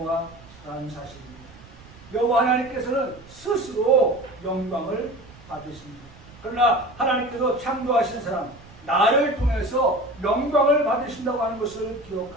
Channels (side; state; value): right; noise; rumble, 22 dB below the sound